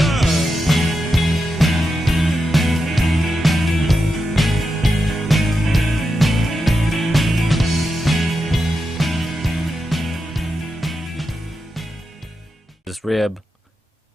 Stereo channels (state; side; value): normal; both; correlation 0.88